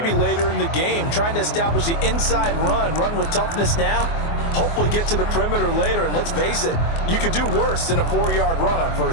later in the game, trying to establish the inside run with toughness now, hopefully get to the perimeter later. And let's face it, you could do worse than a 4-yard run on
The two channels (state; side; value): late; right; 24 ms